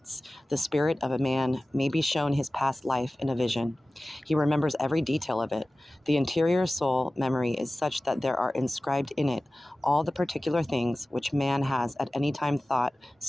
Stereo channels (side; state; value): both; normal; correlation 0.97